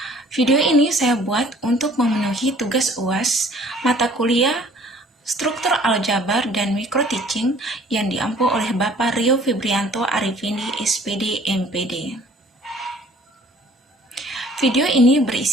Video ini saya buat untuk memenuhi tugas UAS mata kuliah Struktur Aljabar dan Mikro Teaching yang diampu oleh Bapak Rio Febrianto Arifindi, SPD, MPD. Video ini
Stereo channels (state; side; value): normal; both; correlation 0.54